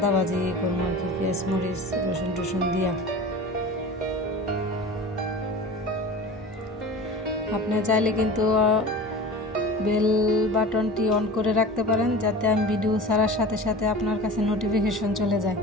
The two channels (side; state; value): both; normal; correlation 0.36